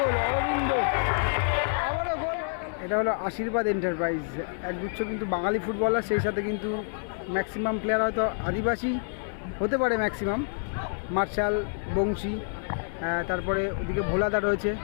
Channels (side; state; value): right; silent; digital silence